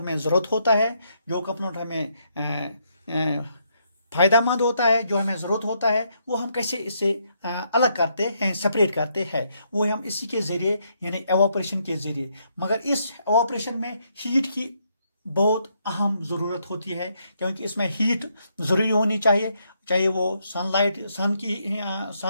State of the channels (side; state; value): both; inverted; correlation -0.75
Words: जरूरत होता है, जो कंपोनेंट हमें फायदेमंद होता है, जो हमें जरूरत होता है, वो हम कैसे इससे अलग करते हैं, सेपरेट करते हैं, वो हम इसी के जरिए यानी एवापोरेशन के जरिए। मगर इस एवापोरेशन में हीट की बहुत अहम जरूरत होती है, क्योंकि इसमें हीट जरूरी होनी चाहिए। चाहे वो सन